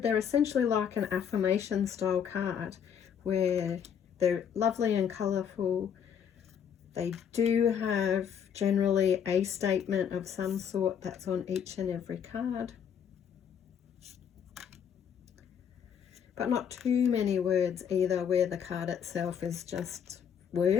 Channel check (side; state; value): right; quieter; 8.1 dB